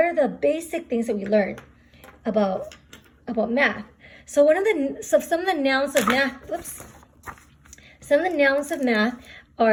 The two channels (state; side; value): identical; both; correlation 1.00